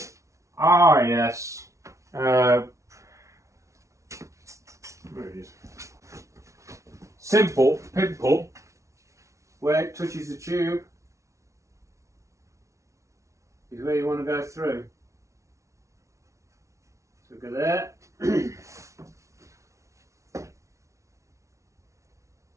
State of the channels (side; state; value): left; late; 0.14 ms